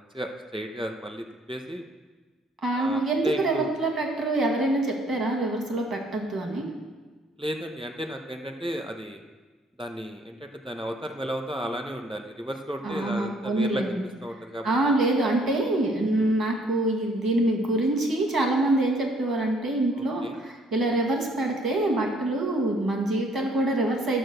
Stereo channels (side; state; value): both; normal; correlation 0.62